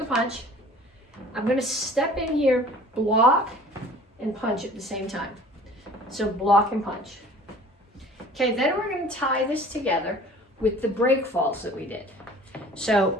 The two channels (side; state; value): both; normal; correlation 0.48